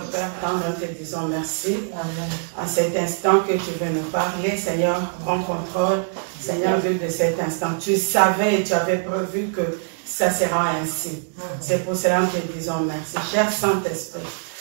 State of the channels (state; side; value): silent; left; digital silence